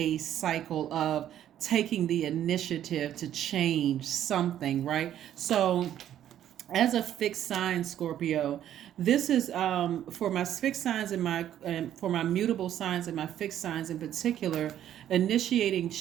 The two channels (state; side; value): quieter; left; 11.1 dB